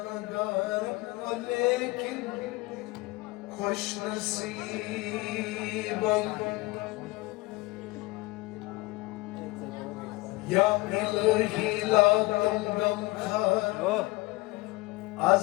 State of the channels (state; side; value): quieter; right; 22.1 dB